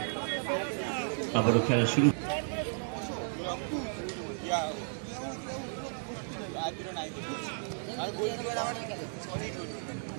আবারও খেলা শুরু।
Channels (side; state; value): left; silent; digital silence